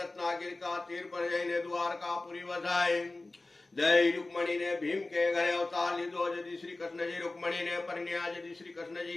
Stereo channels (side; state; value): right; quieter; 3.1 dB